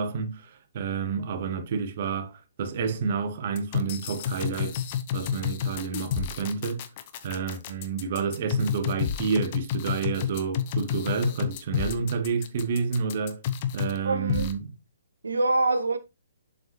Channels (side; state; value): both; inverted; correlation -0.57